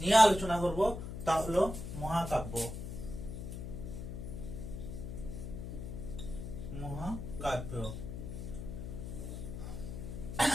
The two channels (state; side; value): noise; left; hum, 7 dB below the sound